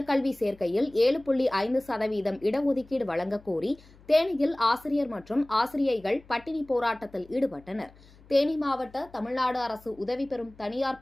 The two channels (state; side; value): noise; left; hum, 25 dB below the sound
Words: சேர்க்கையில் 7.5% இடஒதுக்கீடு வழங்கக் கோரி தேனியில் ஆசிரியர் மற்றும் ஆசிரியைகள் பட்டினி போராட்டத்தில் ஈடுபட்டனர். தேனி மாவட்ட தமிழ்நாடு அரசு உதவி பெறும் தனியார்